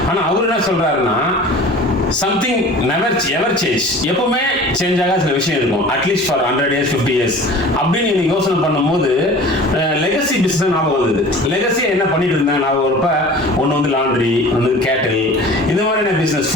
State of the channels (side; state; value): both; normal; correlation 0.42